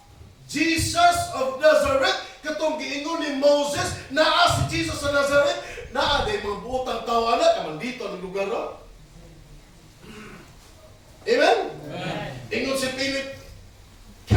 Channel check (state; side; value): identical; both; correlation 1.00